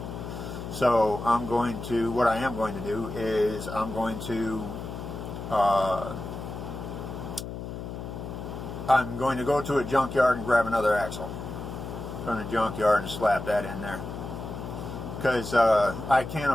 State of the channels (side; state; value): left; noise; hum, 8 dB below the sound